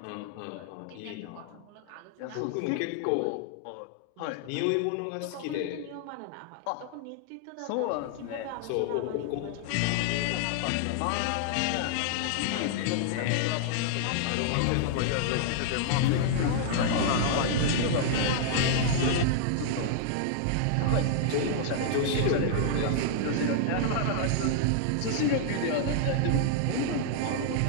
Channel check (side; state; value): both; different; correlation -0.01